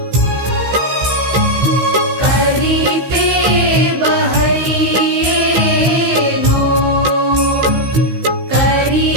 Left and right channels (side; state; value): left; late; 16 ms